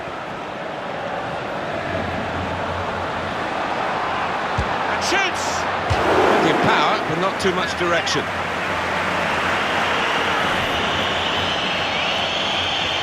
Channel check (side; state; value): both; identical; correlation 1.00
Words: And shoots! Plenty of power, but not too much direction.